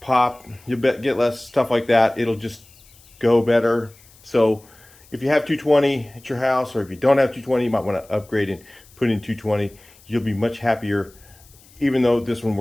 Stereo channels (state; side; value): noise; left; hiss, 27 dB below the sound